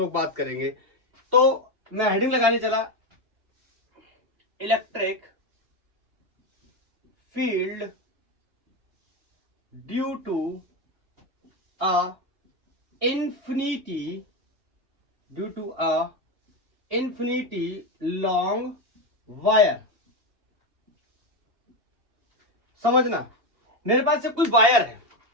बात करेंगे। तो मैं हेडिंग लगाने चला, electric field due to a infinity long wire। समझना, मेरे पास से कोई वायर है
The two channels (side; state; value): left; late; 2.8 ms